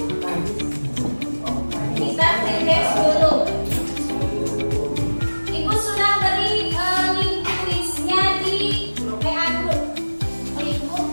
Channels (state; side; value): inverted; both; correlation -1.00